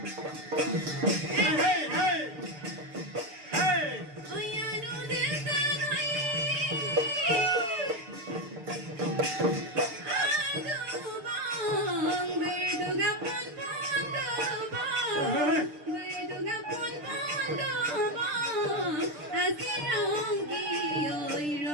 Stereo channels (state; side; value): late; left; 6.7 ms